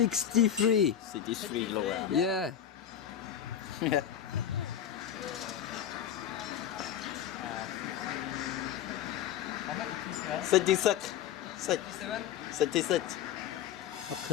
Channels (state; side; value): quieter; right; 9.7 dB